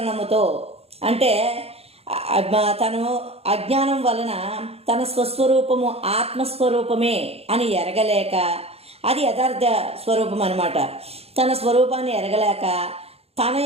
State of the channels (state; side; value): late; left; 0.29 ms